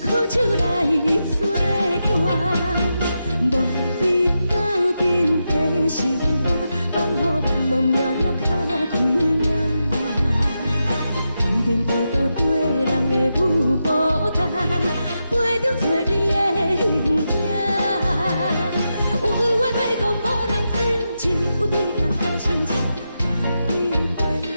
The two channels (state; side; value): inverted; both; correlation -0.87